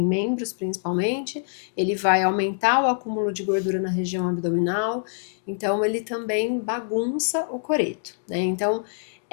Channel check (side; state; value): right; silent; digital silence